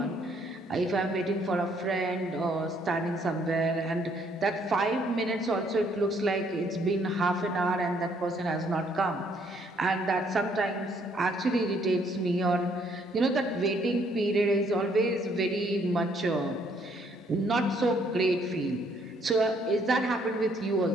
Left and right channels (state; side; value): normal; both; correlation 0.67